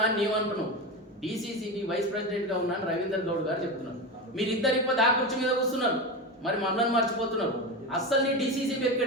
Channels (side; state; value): both; normal; correlation 0.21